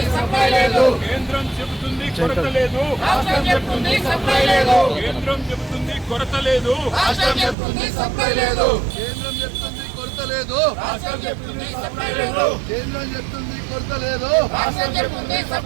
సప్లై లేదు. కేంద్రం చెబుతుంది కొరత లేదు, రాష్ట్రం చెప్తుంది సప్లై లేదు. కేంద్రం చెబుతుంది కొరత లేదు, రాష్ట్రం చెప్తుంది సప్లై లేదు. కేంద్రం చెప్తుంది కొరత లేదు, రాష్ట్రం చెప్తుంది సప్లై లేదు. కేంద్రం చెప్తుంది కొరత లేదు, రాష్ట్రం చెప్తుంది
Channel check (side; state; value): left; drops out; at 7.6 s